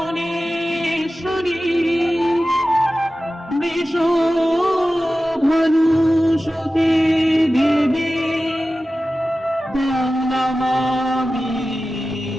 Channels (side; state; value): both; normal; correlation 0.95